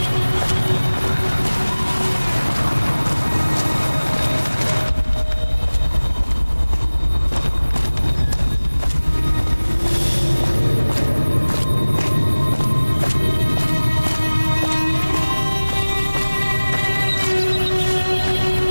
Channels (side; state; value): both; inverted; correlation -1.00